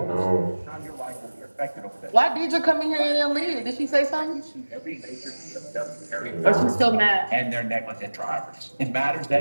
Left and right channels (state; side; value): inverted; both; correlation -1.00